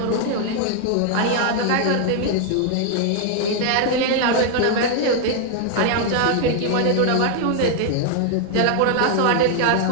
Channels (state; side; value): different; both; correlation 0.00